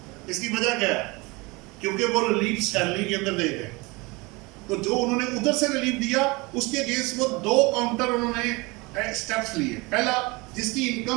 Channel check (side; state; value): left; quieter; 25.2 dB